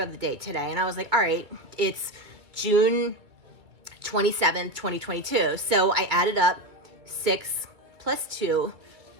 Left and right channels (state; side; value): late; left; 2.3 ms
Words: the day today? And I was all right, it's June 27th, 2022. So I added up 6 plus 2